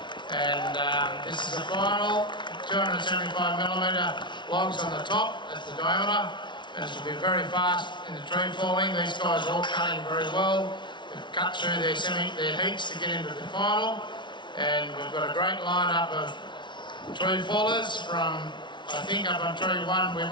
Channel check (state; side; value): late; right; 0.23 ms